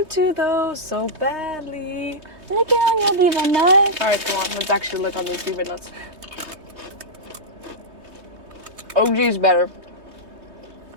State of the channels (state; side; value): late; left; 3.2 ms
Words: to though so badly. Lick it on your beaver nut. All right, come on. Let's actually lick on these beaver nuts. OG's better.